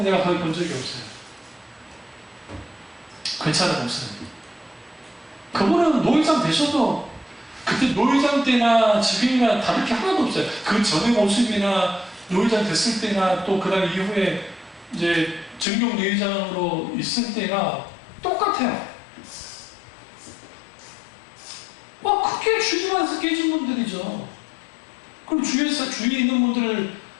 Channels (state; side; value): drops out; right; at 15.7 s